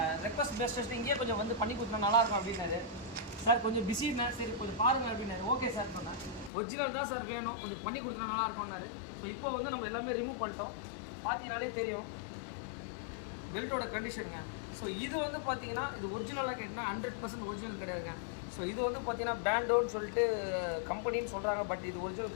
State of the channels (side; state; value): right; drops out; at 6.5 s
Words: ரெக்வஸ்ட் பேஸ்ட் இங்கேயே கொஞ்சம் வந்து பண்ணி கொடுத்தா நல்லாயிருக்கும் அப்படின்னாரு. சார் கொஞ்சம் பிஸின்னா, சரி கொஞ்சம் பாருங்கள் அப்படின்னாரு. ஓகே சார் சொன்னேன். ஒரிஜினல் தான் சார் வேணும், கொஞ்சம் பண்ணி கொடுத்தா நல்லாயிருக்கும்னாரு. ஸோ இப்போ வந்து நம்ம எல்லாமே ரிமூவ் பண்ணிட்டோம். பார்த்தீங்கனாலே தெரியும் பெல்ட்டோட கண்டிஷனுங்க. ஸோ இது வந்து பார்த்தீங்கன்னா இது ஒரிஜினலாக கேட்டிங்கன்னா 100% ஒரிஜினல் கிடையாதுங்க. ஸோ இது வந்து பார்த்தீங்கன்னா பேண்டோன்னு சொல்லிட்டு கம்பெனின்னு சொல்கிறாங்க, பட் இது